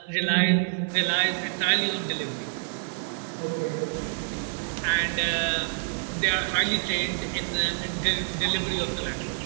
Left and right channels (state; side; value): silent; left; 60 dB below the other